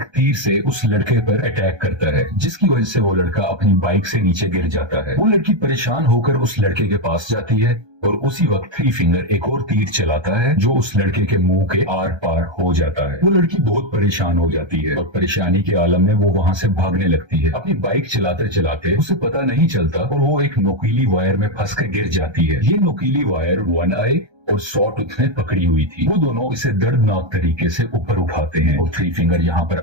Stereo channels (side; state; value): left; late; 1.3 ms